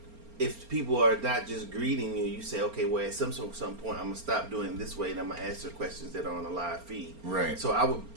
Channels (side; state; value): left; late; 4.3 ms